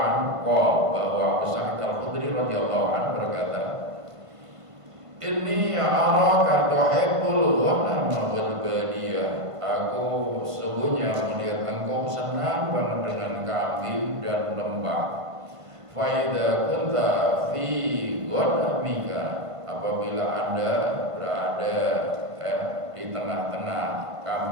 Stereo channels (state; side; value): late; left; 1.5 ms